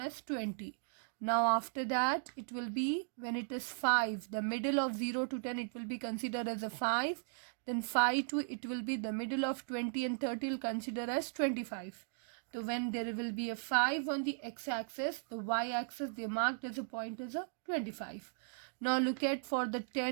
as 20. Now after that, it will be when it is 5, the middle of 0 to 10, it will be considered as a 5. Then 5 to it will be the middle of 20 and 30 will consider as 25. So when there will be a 5 on the x-axis, the y-axis they marked as a point as a 25. Now look at for the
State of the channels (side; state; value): left; silent; digital silence